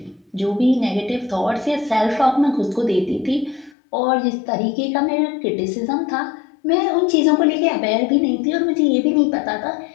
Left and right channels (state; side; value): drops out; right; at 3.8 s